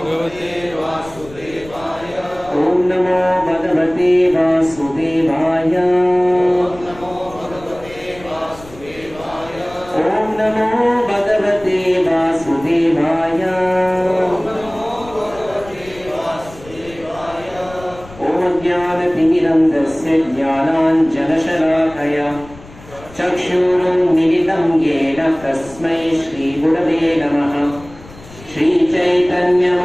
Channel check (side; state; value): left; noise; rumble, 19 dB below the sound